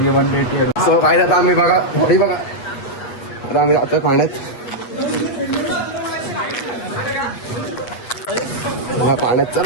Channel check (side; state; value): right; late; 8.3 ms